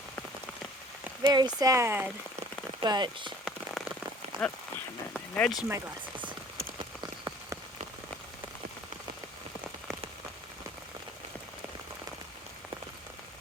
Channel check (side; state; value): both; normal; correlation 0.51